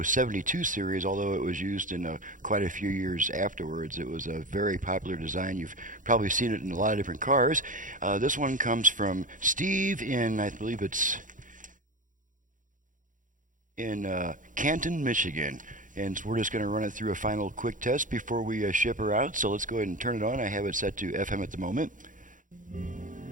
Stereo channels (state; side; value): late; left; 0.38 ms